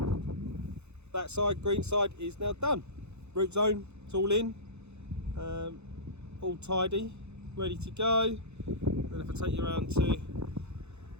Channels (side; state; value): left; late; 0.81 ms